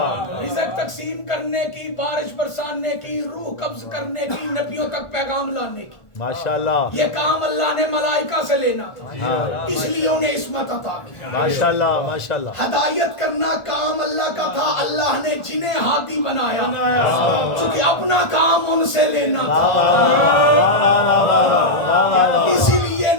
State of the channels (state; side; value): late; right; 1.4 ms